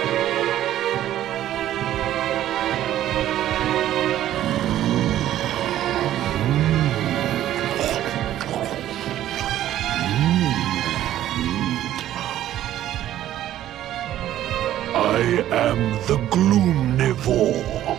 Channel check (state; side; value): quieter; left; 12.6 dB